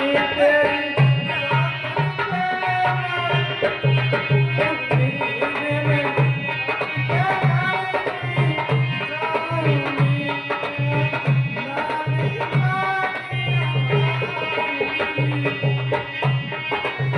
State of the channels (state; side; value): identical; both; correlation 1.00